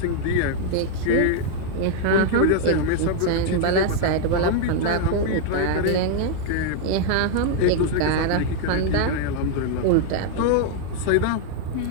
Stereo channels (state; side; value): different; both; correlation 0.00